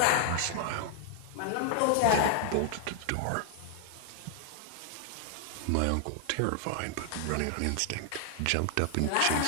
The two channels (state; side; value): different; both; correlation 0.00